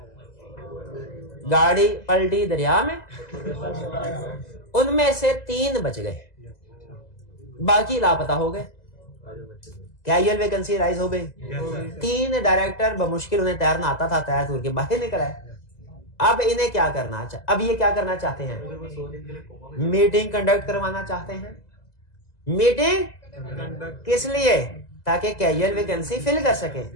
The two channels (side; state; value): right; late; 2.0 ms